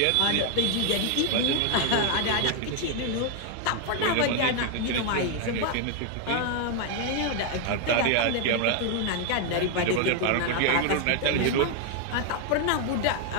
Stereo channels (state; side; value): different; both; correlation 0.01